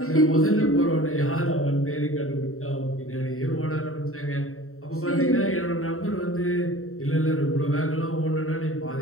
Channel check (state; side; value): late; right; 0.63 ms